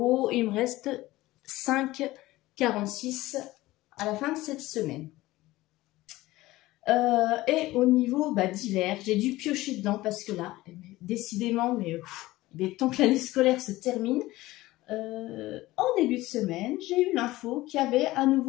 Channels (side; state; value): right; quieter; 18.0 dB